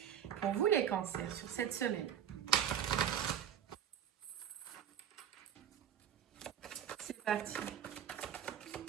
Pour vous les cancers, sur cette semaine. C'est parti.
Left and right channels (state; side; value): quieter; left; 9.2 dB